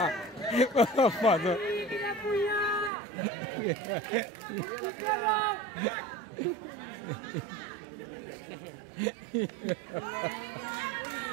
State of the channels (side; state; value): left; drops out; at 2.9 s